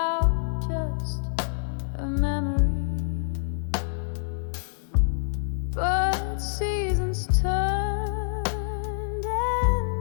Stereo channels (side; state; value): right; silent; digital silence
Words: just a memory. But seasons turned